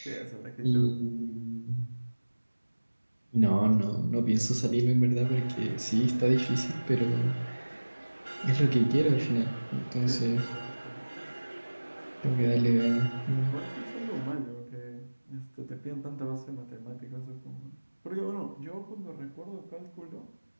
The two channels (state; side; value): inverted; both; correlation -1.00